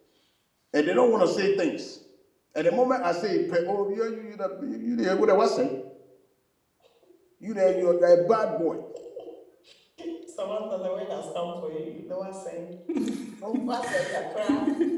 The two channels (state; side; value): identical; both; correlation 1.00